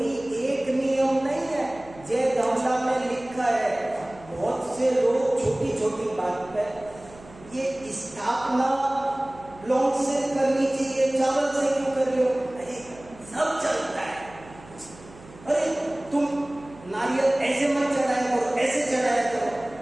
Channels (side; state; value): right; noise; hum, 21 dB below the sound